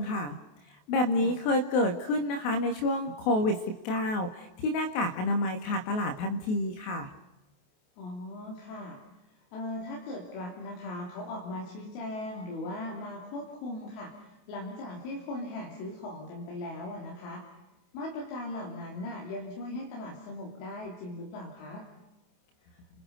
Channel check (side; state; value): right; late; 28 ms